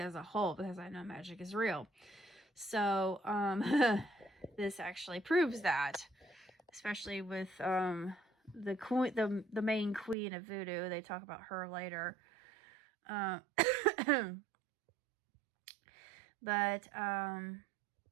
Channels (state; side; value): drops out; left; at 10.2 s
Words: a whole because I know magic is real. So this actually proves that, especially with the queen, the main queen of voodoo. They talk about her later. But I